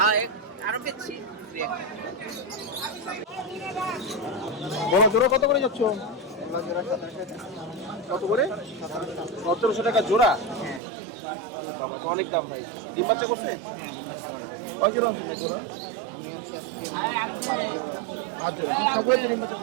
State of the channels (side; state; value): left; drops out; at 10.8 s